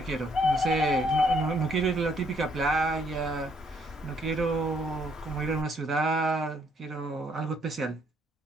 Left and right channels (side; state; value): both; normal; correlation 0.69